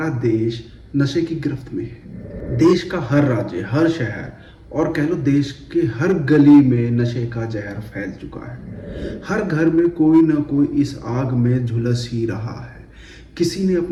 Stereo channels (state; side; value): identical; both; correlation 1.00